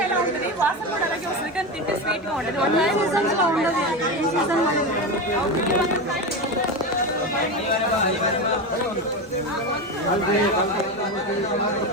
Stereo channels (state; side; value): normal; both; correlation 0.19